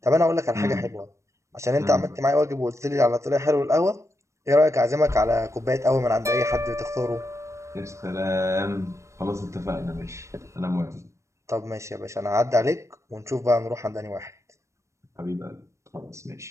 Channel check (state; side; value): late; left; 0.14 ms